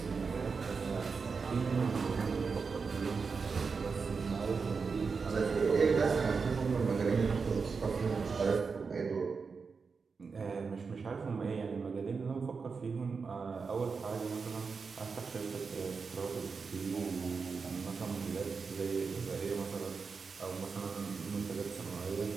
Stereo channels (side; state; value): left; quieter; 5.1 dB